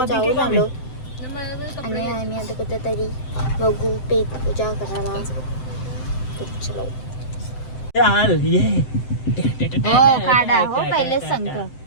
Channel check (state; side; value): late; right; 7.8 ms